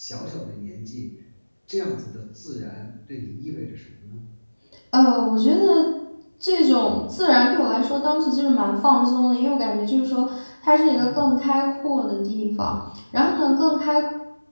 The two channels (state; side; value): inverted; both; correlation -1.00